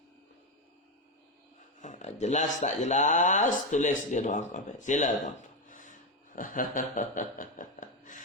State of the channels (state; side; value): normal; both; correlation 0.11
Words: Jelas tak jelas? Tulis di ruang komen. Sila tuan-puan.